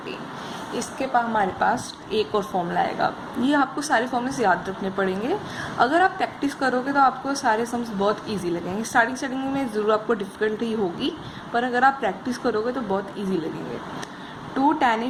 इसके बाद हमारे पास एक और फॉर्मूला आएगा। ये आपको सारे फॉर्मूले याद रखने पड़ेंगे। अगर आप प्रैक्टिस करोगे तो आपको सारे सम्स बहुत इजी लगेंगे। स्टार्टिंग में ज़रूर आपको डिफ़िकल्टी होगी, पर अगर आप प्रैक्टिस करोगे तो बहुत इजी लगेंगे। 2 tan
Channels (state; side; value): identical; both; correlation 1.00